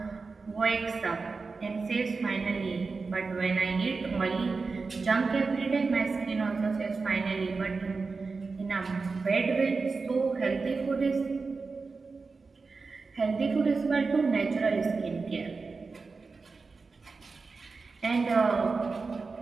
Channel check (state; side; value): quieter; left; 4.3 dB